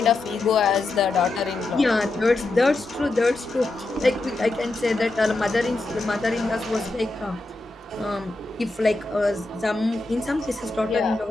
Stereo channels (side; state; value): right; quieter; 3.0 dB